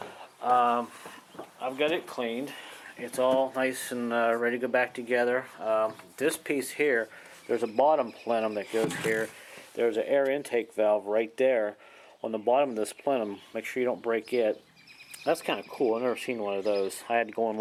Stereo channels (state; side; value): identical; both; correlation 1.00